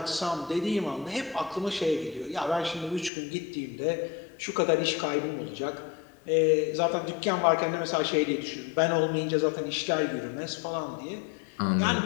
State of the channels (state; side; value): drops out; right; at 3.1 s